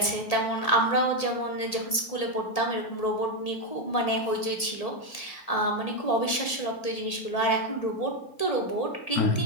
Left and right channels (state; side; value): late; right; 1.8 ms